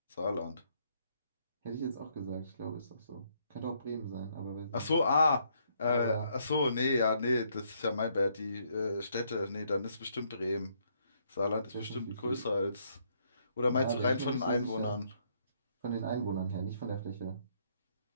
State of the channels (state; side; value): inverted; both; correlation -0.71